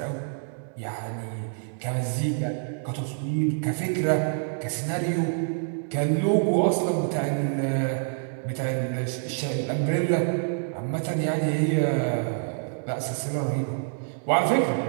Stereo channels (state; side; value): silent; left; digital silence